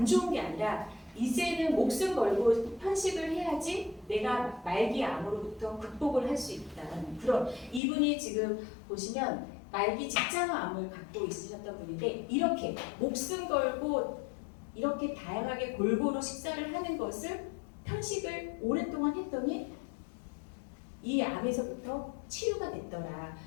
좋은 게 아니라 이제는 목숨 걸고 편식을 해야지 내가 말기 암으로부터 극복을 할 수 있다는 그런, 이분이 지금 보시면 말기 직장암을 갖고 있으셨던 분인데 이렇게 목숨 걸고 이렇게 다양하게 골고루 식사를 하는 것을 편식을 오랫동안 했더니 이 암에서부터 치유가 됐더라.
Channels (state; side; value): drops out; right; at 7.8 s